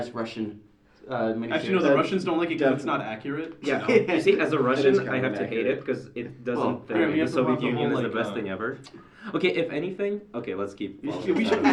Russian miniseries. Actually, no, the Russians don't like it because it's not accurate. Yeah. So. You see, as a Russian, kind I of have to hate inaccurate. it because it doesn't Well, think I mean, we the have to Soviet watch the Union whole, is the like, best thing ever. Okay, if anything, okay, let's keep. We following should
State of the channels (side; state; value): both; identical; correlation 1.00